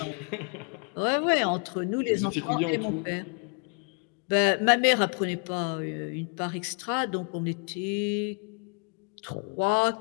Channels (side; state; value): right; quieter; 38.5 dB